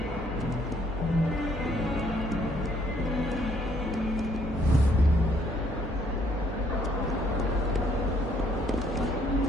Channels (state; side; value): normal; both; correlation 0.66